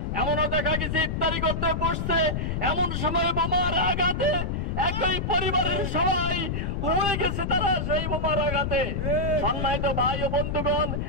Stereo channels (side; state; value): left; noise; rumble, 1 dB below the sound